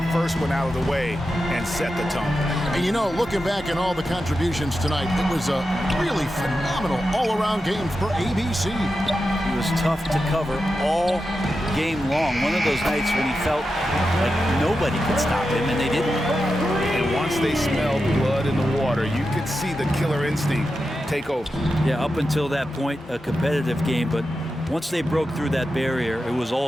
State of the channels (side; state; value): both; normal; correlation 0.90